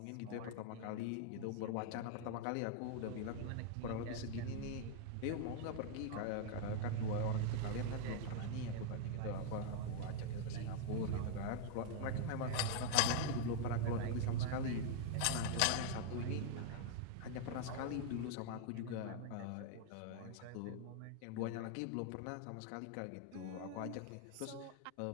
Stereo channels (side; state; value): both; different; correlation 0.00